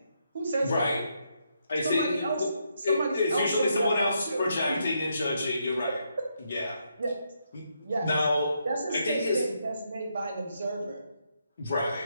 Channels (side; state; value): both; inverted; correlation -0.78